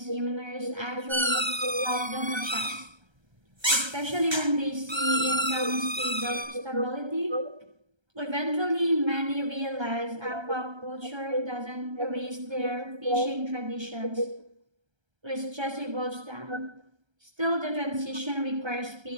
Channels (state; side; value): late; left; 1.3 ms